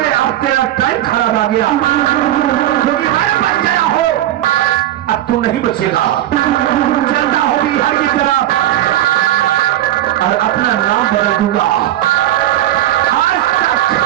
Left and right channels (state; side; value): quieter; left; 13.2 dB